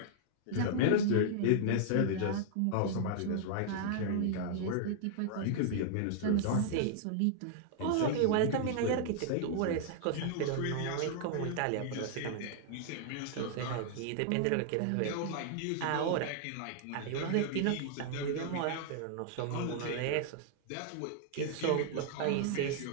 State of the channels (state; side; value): different; both; correlation -0.01